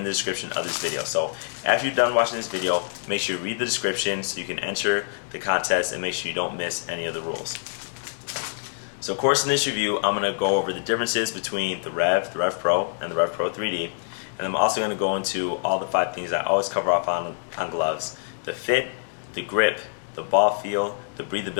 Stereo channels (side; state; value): right; silent; digital silence